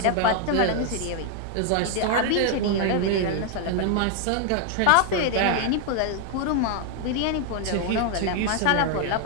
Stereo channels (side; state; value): both; different; correlation 0.00